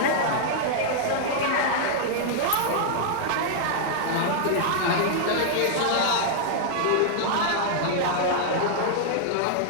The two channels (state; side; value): different; both; correlation -0.01